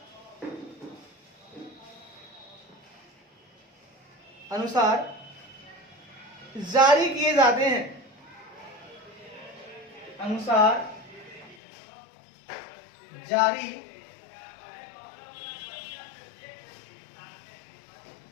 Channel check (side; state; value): right; drops out; at 11.6 s